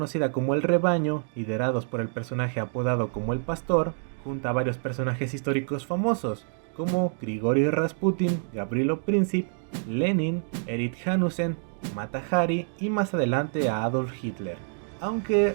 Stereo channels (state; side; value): silent; left; 60 dB below the other